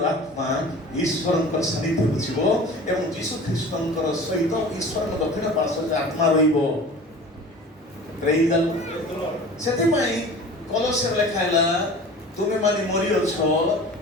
ଆତ୍ମା ଈଶ୍ୱରଙ୍କର ସାନ୍ନିଧ୍ୟକୁ ଯିବ ଏବଂ ଯୀଶୁ ଖ୍ରୀଷ୍ଟଙ୍କର ସହିତ ଈଶ୍ୱରଙ୍କ ଦକ୍ଷିଣ ପାର୍ଶ୍ୱରେ ଆତ୍ମା ରହିବ। ପ୍ରେଜ୍ ଦ ଲର୍ଡ। ସେଥିପାଇଁ କଲୋସ୍ୟରେ ଲେଖା ହେଲା, ତୁମେ ମାନେ ମରିଅଛ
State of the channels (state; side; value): normal; both; correlation 0.40